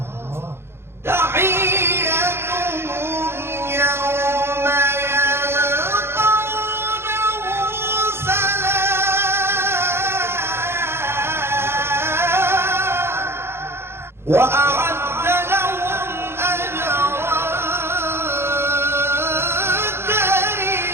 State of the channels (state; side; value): late; left; 0.12 ms